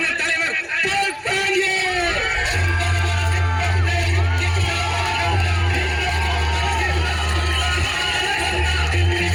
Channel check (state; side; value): identical; both; correlation 1.00